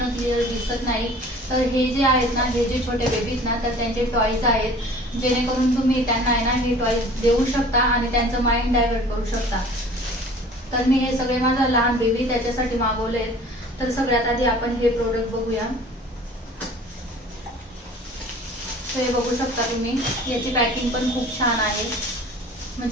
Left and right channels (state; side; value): normal; both; correlation 0.46